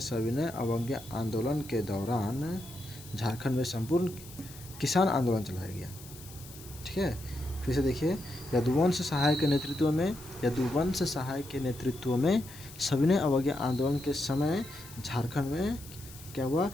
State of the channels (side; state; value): left; noise; hiss, 17 dB below the sound